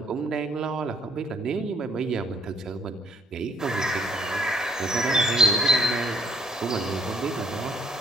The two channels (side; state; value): both; normal; correlation 0.66